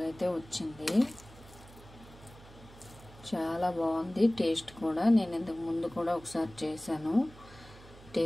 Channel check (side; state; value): right; noise; hum, 20 dB below the sound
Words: అయితే వచ్చింది, చాలా బాగుంది టేస్ట్ కూడా. నేను ఇంతకు ముందు కూడా ఒకసారి చేశాను,